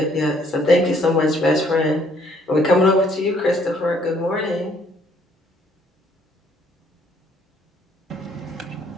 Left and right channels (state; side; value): normal; both; correlation 0.64